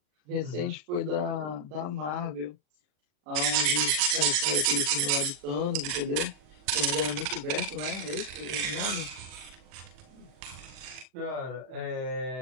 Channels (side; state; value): left; late; 39 ms